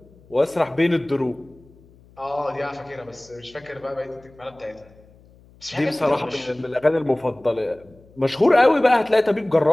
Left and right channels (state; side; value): noise; left; hum, 27 dB below the sound